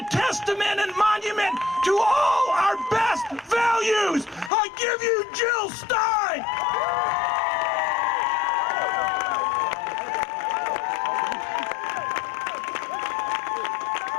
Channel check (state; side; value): drops out; right; at 4.5 s